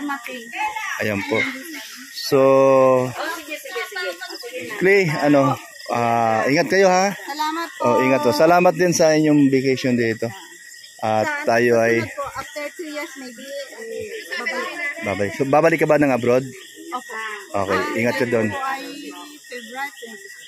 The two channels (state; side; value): identical; both; correlation 1.00